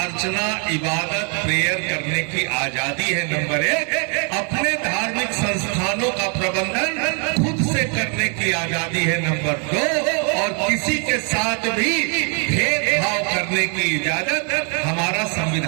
इबादत, प्रेयर करने की आजादी है। नंबर एक, अपने धार्मिक संस्थानों का प्रबंधन खुद से करने की आजादी है। नंबर दो, और किसी के साथ भी भेदभाव करने की इजाजत हमारा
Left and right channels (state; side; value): quieter; left; 38.1 dB